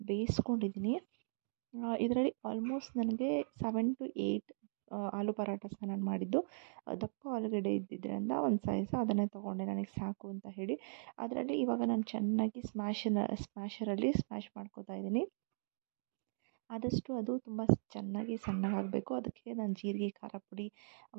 ಬೇಯಿಸ್ಕೊಂಡಿದ್ದೀನಿ. ಇದರಲ್ಲಿ ಆಲ್ಮೋಸ್ಟ್ ನನಗೆ 7 to 8 ಆಲೂ ಪರಾಟಸ್ನ ನಾನು ಮಾಡಿದ್ದು. ದಪ್ಪ ಆಲೂಗಡ್ಡೆ ಇದ್ದಿದ್ದರಿಂದ ಒಂದು ಸೈಜ್ ಅದನ್ನೇ ತೊಗೊಂಡೆ, ನನಗೆ ಸಾಕು ಅಂತ ಹೇಳಿ. ಅದರಲ್ಲಿ ಇವಾಗ ನಾನು ಚೆನ್ನಾಗಿ ಸ್ಮ್ಯಾಶರಲ್ಲಿ ಸ್ಮ್ಯಾಶ್ ಮಾಡ್ಕೋತಾ ಇದ್ದೀನಿ. ಆದಷ್ಟು ಅದು ತುಂಬ ಚೆನ್ನಾಗಿ ಸಣ್ಣಗಾಗಬೇಕು. ಅದಕ್ಕೆ ನಾನು ಜೀರಿಗೆ, ಖಾರ ಪುಡಿ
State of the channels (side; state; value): left; silent; digital silence